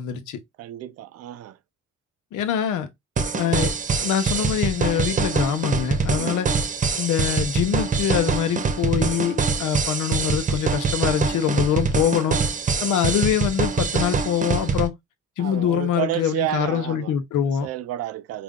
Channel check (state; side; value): normal; both; correlation 0.32